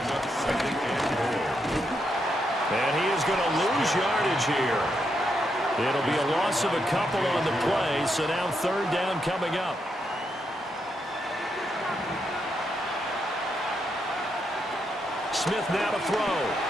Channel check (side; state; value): both; normal; correlation 0.81